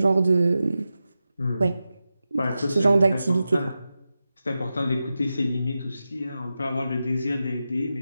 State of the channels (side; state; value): both; inverted; correlation -0.92